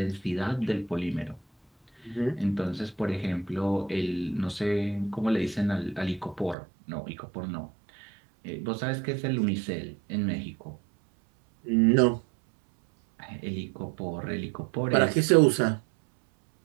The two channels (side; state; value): left; drops out; at 6.6 s